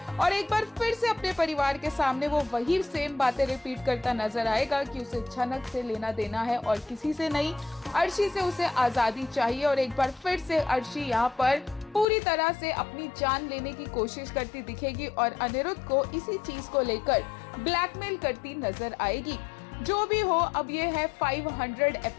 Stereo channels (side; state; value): right; drops out; at 12.1 s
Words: और एक बार फिर से अपने परिवार के सामने वो वही सेम बातें रिपीट करता नजर आएगा कि उसे झनक से लेना देना है और किसी से नहीं, अर्शी से उसे आजादी चाहिए। और एक बार फिर से अर्शी यहाँ पर पूरी तरह से अपनी जान लेने की कोशिश करती दिखेगी और अनिरुद्ध को इसी चीज को लेकर ब्लैकमेल करती नजर आएगी। जो भी हो, अब ये है 500